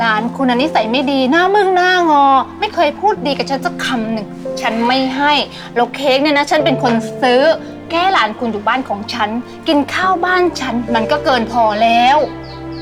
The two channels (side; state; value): both; identical; correlation 1.00